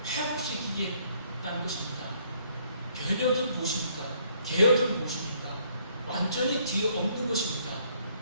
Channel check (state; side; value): inverted; both; correlation -0.66